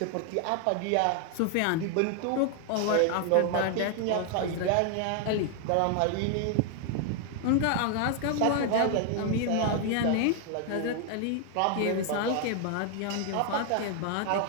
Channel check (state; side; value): different; both; correlation 0.00